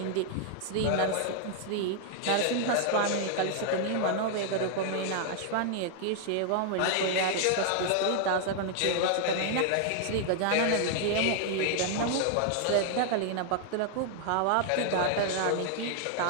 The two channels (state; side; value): different; both; correlation 0.00